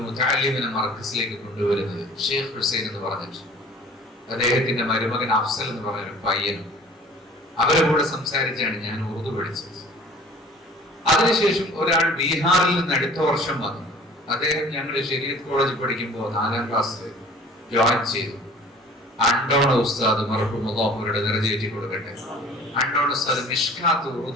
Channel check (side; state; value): both; normal; correlation 0.48